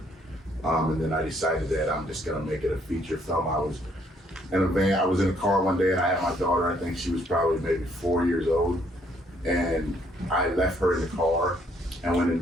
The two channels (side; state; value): both; normal; correlation 0.67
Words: And then I decided that I'm just gonna make it a feature film. I was in a van. I was in a car one day and I had my daughter. I think she was probably maybe 4 years old. And I left her in the car and went